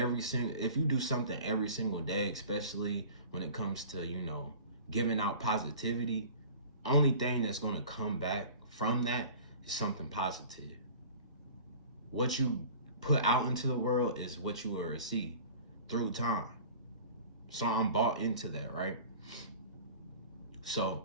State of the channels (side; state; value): both; inverted; correlation -0.42